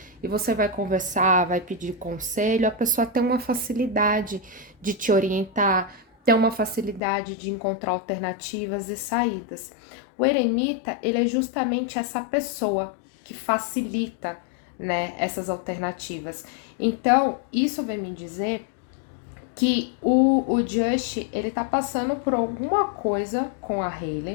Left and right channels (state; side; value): drops out; right; at 7.0 s